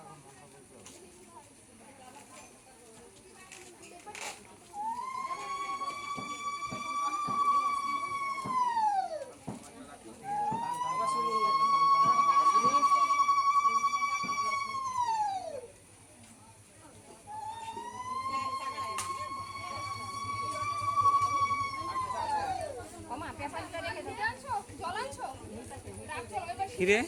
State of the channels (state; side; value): identical; both; correlation 1.00